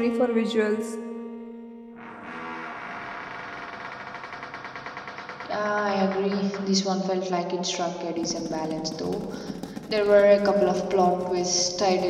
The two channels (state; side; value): identical; both; correlation 1.00